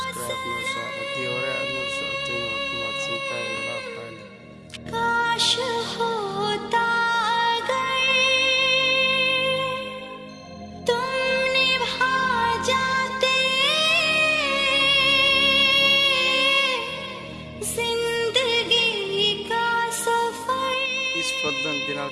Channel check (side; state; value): both; identical; correlation 1.00